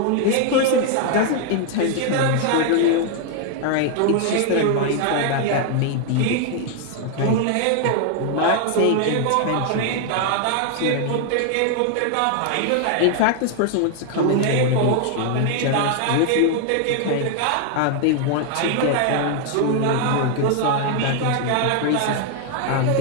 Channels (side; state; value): both; different; correlation 0.00